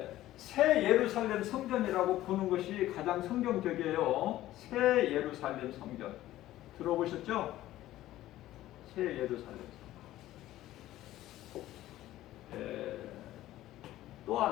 새 예루살렘 성전이라고 보는 것이 가장 성경적이에요. 새 예루살렘 성전. 들어보셨죠? 새 예루살렘 성전. 또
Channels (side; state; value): right; quieter; 14.8 dB